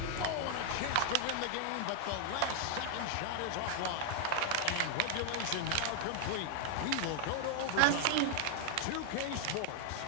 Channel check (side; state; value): both; different; correlation 0.00